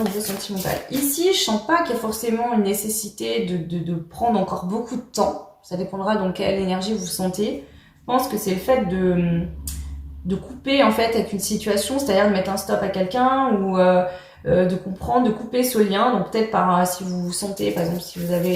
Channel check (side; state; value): both; identical; correlation 1.00